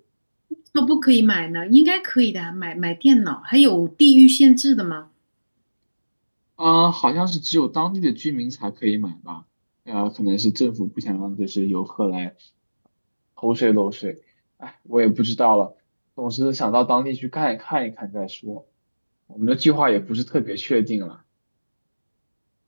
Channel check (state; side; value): inverted; both; correlation -1.00